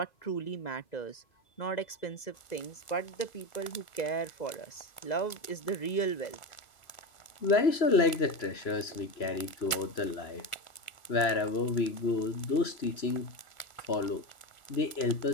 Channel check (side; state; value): right; late; 1.4 ms